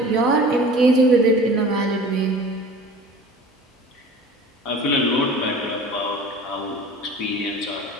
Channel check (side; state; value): both; normal; correlation 0.41